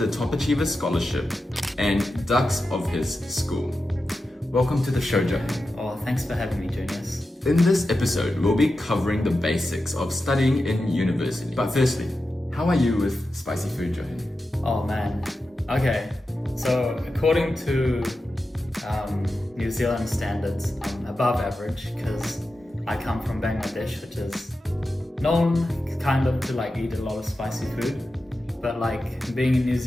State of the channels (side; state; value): both; normal; correlation 0.91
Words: Top Achiever Scholarship, and Dux of his school. Welcome to the show, Jahin. Oh, thanks for having me, Juniors. In this episode, we'll be covering the basics of studying in university. But firstly, how are you with spicy food, Jahin? Oh man. Okay. So according to New Zealand standards, I'm above average because I come from Bangladesh, which is known kind of to like eat a lot of spicy food. But like being in New